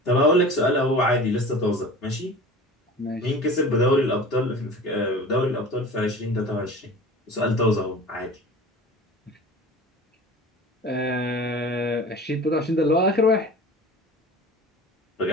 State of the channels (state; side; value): normal; both; correlation 0.38